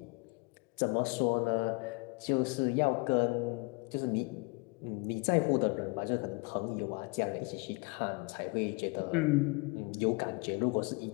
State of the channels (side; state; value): right; quieter; 29.6 dB